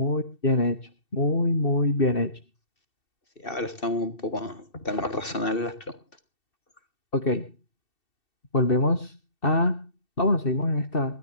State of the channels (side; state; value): right; late; 2.7 ms